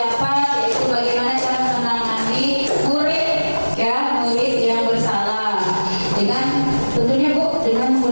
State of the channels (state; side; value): inverted; both; correlation -1.00